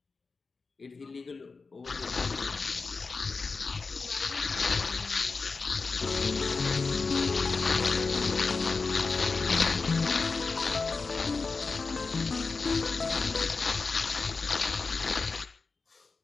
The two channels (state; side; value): quieter; right; 4.3 dB